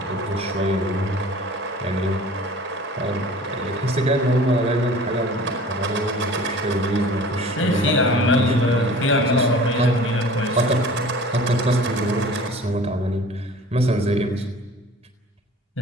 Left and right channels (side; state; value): both; normal; correlation 0.44